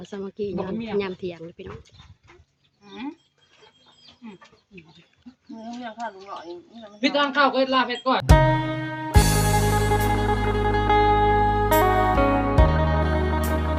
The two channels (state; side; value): identical; both; correlation 1.00